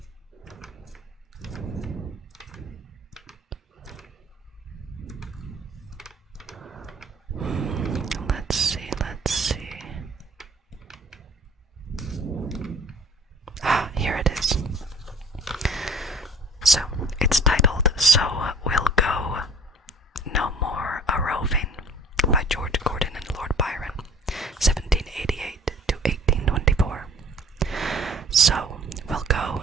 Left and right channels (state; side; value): normal; both; correlation 0.48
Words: Let's see, let's see. Ah, here it is. So, it's titled So We'll Go No More a Roving by George Gordon and Lord Byron, 1788 to 1824. So we'll go